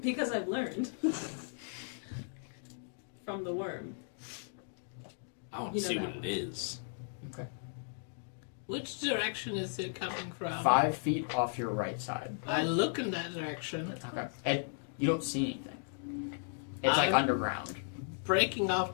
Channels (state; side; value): silent; right; digital silence